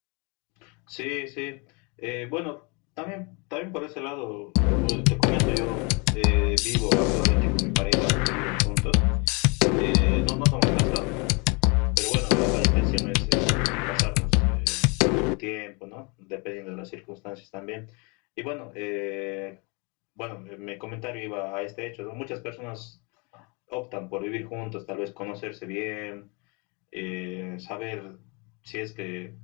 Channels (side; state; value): right; quieter; 31.0 dB